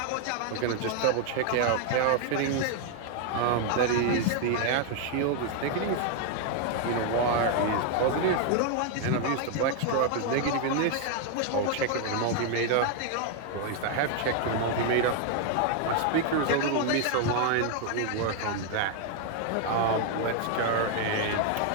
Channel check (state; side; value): different; both; correlation 0.00